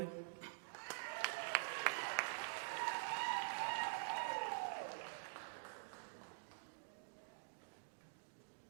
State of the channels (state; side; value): silent; left; digital silence